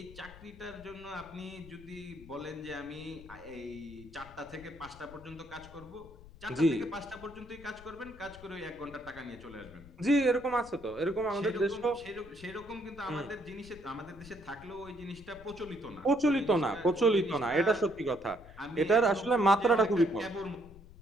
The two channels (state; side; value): noise; left; rumble, 19 dB below the sound